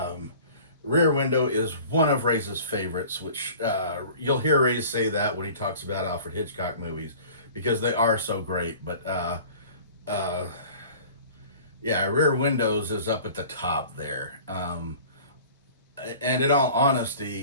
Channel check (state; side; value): inverted; both; correlation -0.45